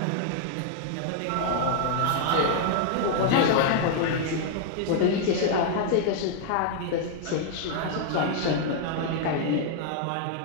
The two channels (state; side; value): different; both; correlation -0.01